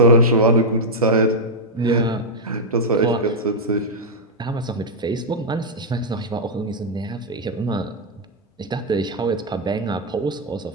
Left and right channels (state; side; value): normal; both; correlation -0.03